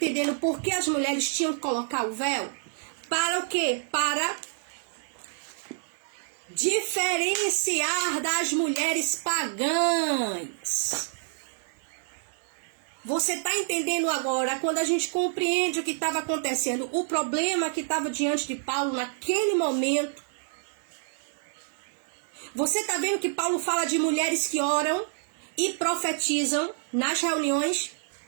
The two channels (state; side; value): silent; left; digital silence